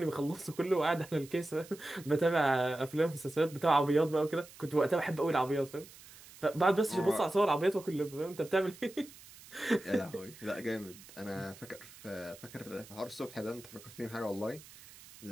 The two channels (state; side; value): noise; right; hiss, 20 dB below the sound